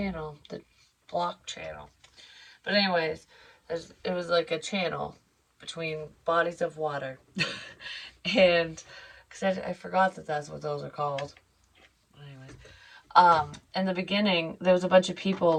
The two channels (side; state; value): both; identical; correlation 1.00